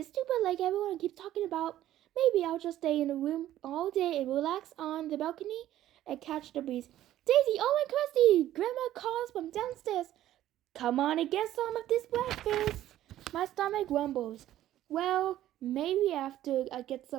stupid lake everyone keeps talking about. Maybe I'll just stay in the room all day and relax on the balcony and catch the breeze. Daisy, Owen, Christy! Grandma calls from downstairs. Come on and get some of this breakfast. My stomach grumbles. Well, maybe after I get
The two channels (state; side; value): quieter; left; 13.1 dB